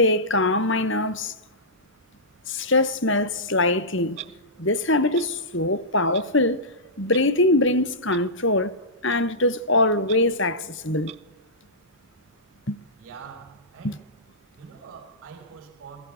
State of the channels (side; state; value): both; normal; correlation -0.16